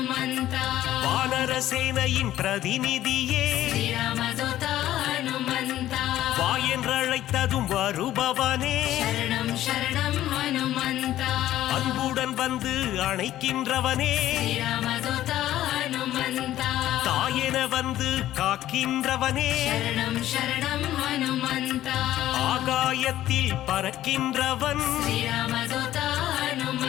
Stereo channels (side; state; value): right; quieter; 13.5 dB